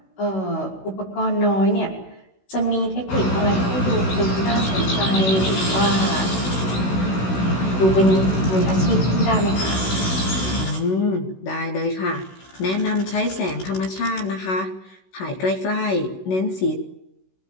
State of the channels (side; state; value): right; late; 16 ms